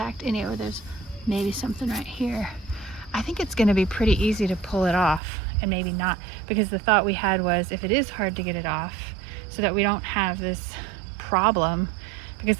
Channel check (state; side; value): drops out; left; at 5.2 s